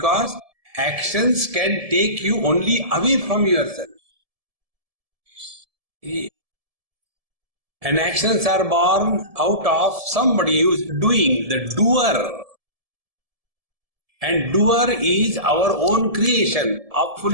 actions can take you only away from yourself. And actions are born out of somebody who is doing, the doer. And doer is our own creation of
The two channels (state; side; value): late; left; 1.7 ms